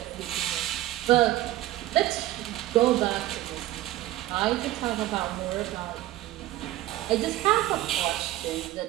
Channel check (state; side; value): quieter; left; 15.6 dB